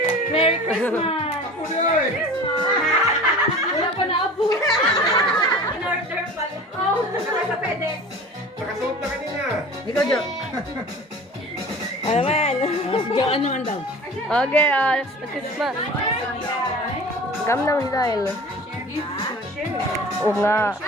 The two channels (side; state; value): both; normal; correlation 0.39